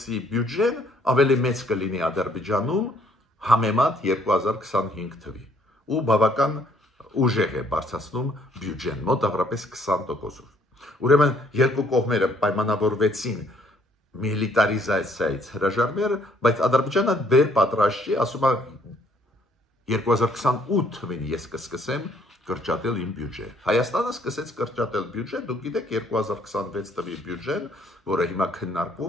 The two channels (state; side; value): normal; both; correlation 0.64